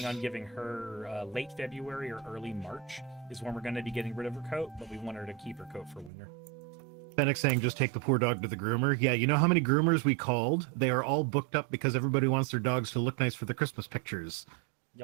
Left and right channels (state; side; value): drops out; left; at 6.1 s